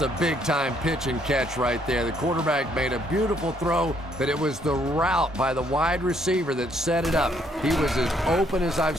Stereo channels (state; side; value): normal; both; correlation 0.68